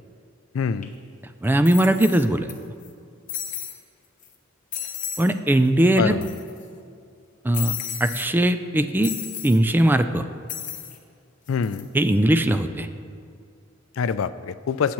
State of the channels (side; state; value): both; normal; correlation 0.76